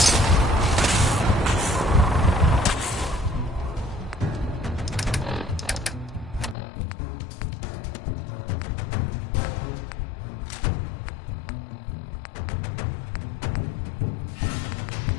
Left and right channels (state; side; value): drops out; right; at 6.6 s